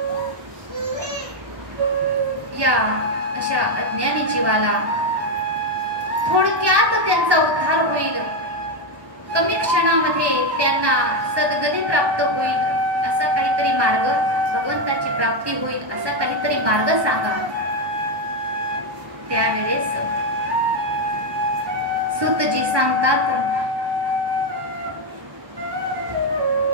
या अशा अज्ञानी जीवाला थोडक्यात त्यांचा उद्धार होईल, कमी क्षणामध्ये त्यांना सद्गती प्राप्त होईल, असा काहीतरी मार्ग, भगवंताची प्राप्ती होईल असा काहीतरी मार्ग सांगा. त्यावेळेस सूतजी सांगतात,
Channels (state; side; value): late; left; 1.1 ms